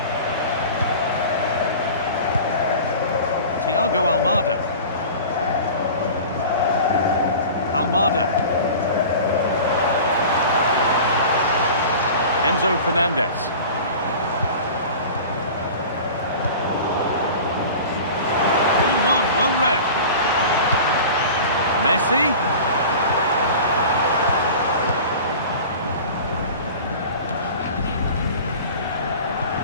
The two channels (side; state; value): both; inverted; correlation -0.38